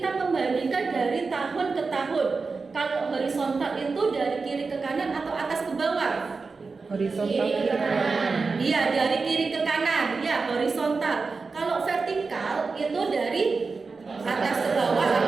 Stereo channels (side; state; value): left; quieter; 4.4 dB